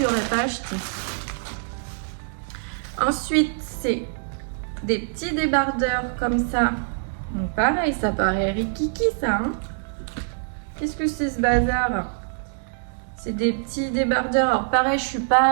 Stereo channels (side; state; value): left; silent; digital silence